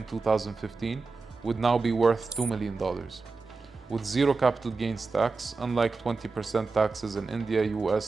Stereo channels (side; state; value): left; quieter; 4.1 dB